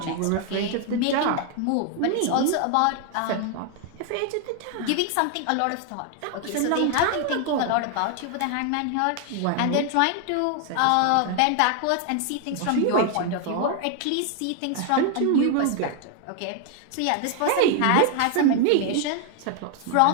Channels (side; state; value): both; different; correlation 0.00